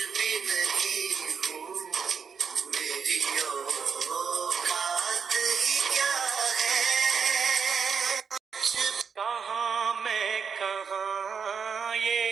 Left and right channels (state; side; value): quieter; left; 6.3 dB